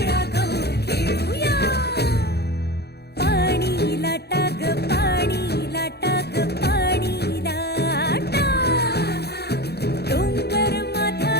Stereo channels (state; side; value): late; right; 0.47 ms